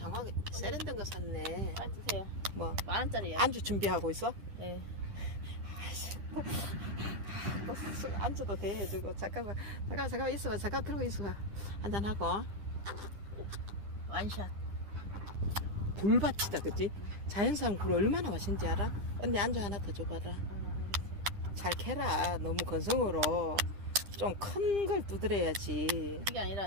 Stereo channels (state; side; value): late; left; 10 ms